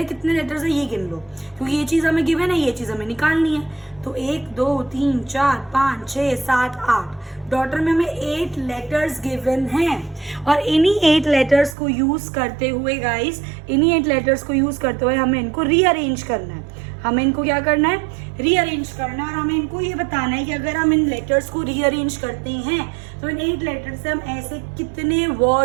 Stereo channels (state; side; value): drops out; left; at 11.8 s